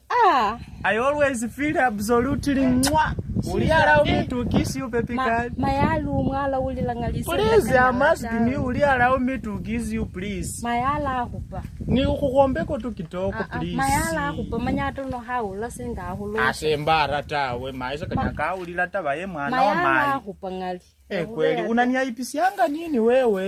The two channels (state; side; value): identical; both; correlation 1.00